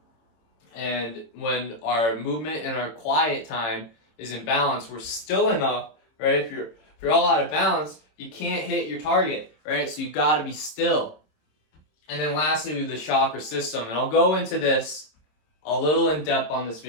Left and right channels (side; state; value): right; late; 26 ms